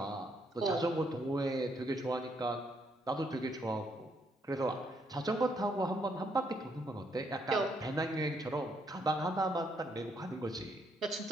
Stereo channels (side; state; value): both; normal; correlation 0.73